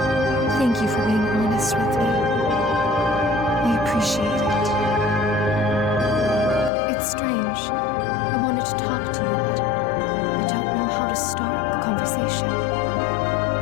Thank you for being honest with me. I appreciate it. It's strange. I wanted to talk to you, but I don't know how to start the conversation.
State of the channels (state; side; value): drops out; right; at 6.7 s